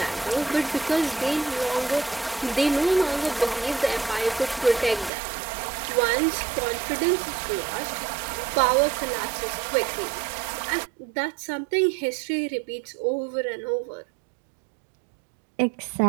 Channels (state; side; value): drops out; left; at 5.1 s